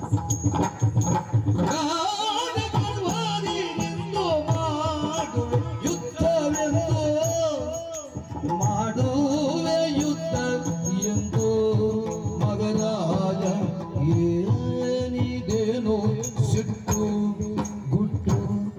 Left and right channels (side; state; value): both; identical; correlation 1.00